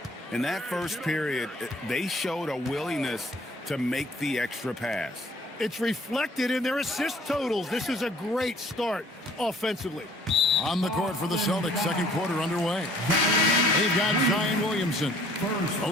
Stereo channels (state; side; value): normal; both; correlation 0.56